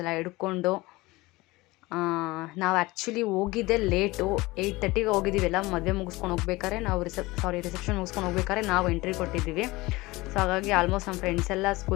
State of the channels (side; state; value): right; quieter; 21.1 dB